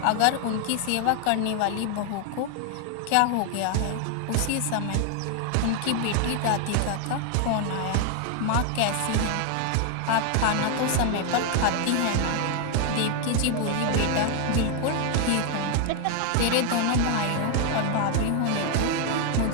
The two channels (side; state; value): both; different; correlation 0.00